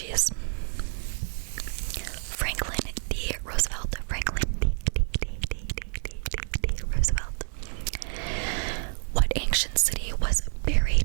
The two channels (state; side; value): silent; left; 59 dB below the other